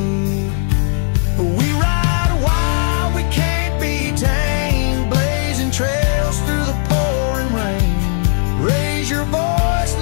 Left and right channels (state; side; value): silent; right; 68 dB below the other